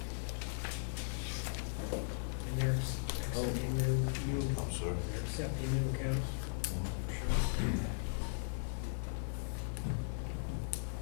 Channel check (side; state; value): right; silent; digital silence